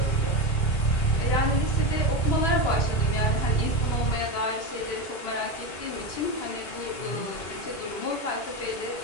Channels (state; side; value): late; right; 2.8 ms